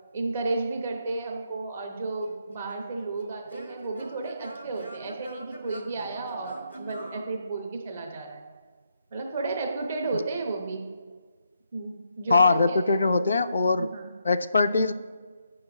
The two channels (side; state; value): both; inverted; correlation -0.78